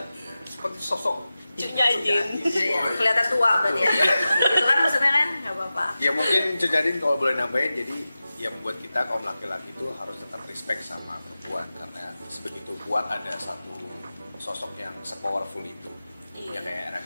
Seperti sosok Cunya Jin. Iya, kelihatan tua berarti ya. Gitu kan maksudnya kan? Gak apa-apa. Ya mungkin Cudadin kalau boleh nambahin, jadi yang membuat kita kaum laki-laki itu harus tetap respect sama perempuan karena sebegitu kuat ada satu sosok yang se-powerful itu. Iya. Ya kayak Era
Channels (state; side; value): inverted; both; correlation -0.95